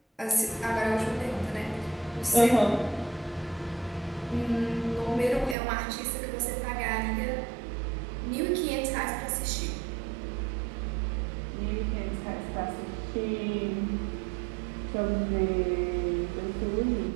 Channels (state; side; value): drops out; left; at 5.6 s